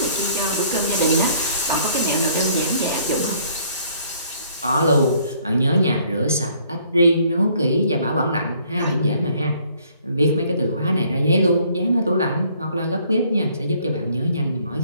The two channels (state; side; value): inverted; both; correlation -0.61